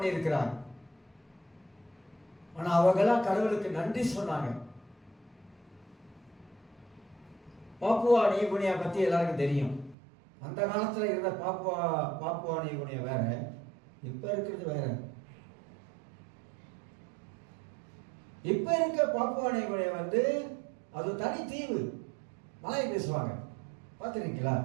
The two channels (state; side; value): drops out; left; at 10.0 s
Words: இருக்கிறாங்க. ஆனா அவங்கெல்லாம் கடவுளுக்கு நன்றி சொன்னாங்க. பாப்புவா நியூகினியா பத்தி எல்லாருக்கும் தெரியும். அந்த காலத்துல இருந்த பாப்புவா நியூகினியா வேற, இப்ப இருக்கிறது வேற. இப்ப இருக்க பாப்புவா நியூகினியா அது தனி தீவு, மலை பேசுவாங்க. பார்த்துருக்கீங்களா?